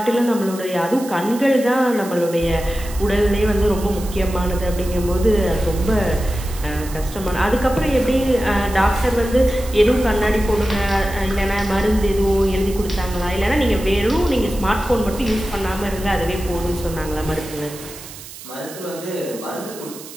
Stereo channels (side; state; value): right; noise; hiss, 15 dB below the sound